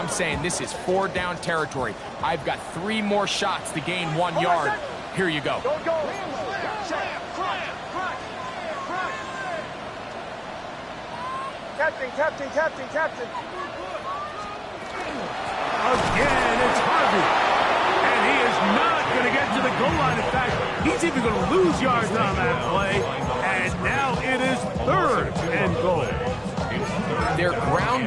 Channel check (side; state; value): both; identical; correlation 1.00